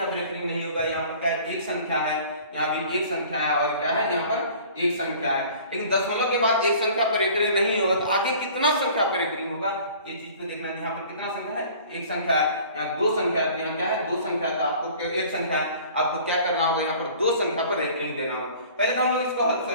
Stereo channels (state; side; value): inverted; both; correlation -0.48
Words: पर रेकरिंग नहीं होगा, यहाँ पर क्या है, एक संख्या है, यहाँ भी एक संख्या है और क्या है, यहाँ पर एक संख्या है। लेकिन दशमलव के बाद एक संख्या पर रेकरिंग नहीं होगा तो आगे कितना संख्या पर रेकरिंग होगा, ये चीज को देखना है। यहाँ पर कितना संख्या है, एक संख्या है, यहाँ दो संख्या है, यहाँ क्या है, दो संख्या है, तो आपको एक संख्या है, आपको क्या करना होगा, यहाँ पर दो संख्या पर रेकरिंग देना होगा। पहले तो हम लोग इसको